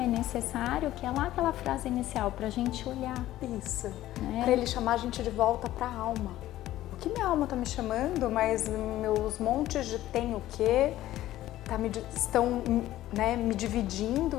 é necessário, que é lá aquela frase inicial, pra gente olhar. Isso, né? Para ele chamar a gente de volta pra alma. O que minha alma tá me chamando, mas meus montes de tem o quê? Estão, né, me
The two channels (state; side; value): quieter; right; 14.5 dB